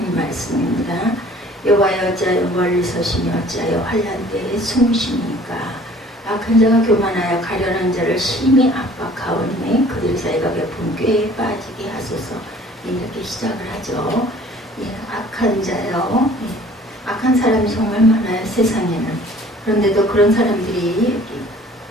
말씀입니다. 여호와여 어찌하여 멀리 서시며 어찌하여 환난 때에 숨으시니까. 악한 자가 교만하여 가련한 자를 심히 압박하오니 그들의 사이가 베푼 꾀에 빠지게 하소서. 이렇게 시작을 하죠. 악한 자요. 악한 사람이 정말 많아요, 세상에는. 그런데도 그런 사람들이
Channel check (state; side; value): normal; both; correlation 0.51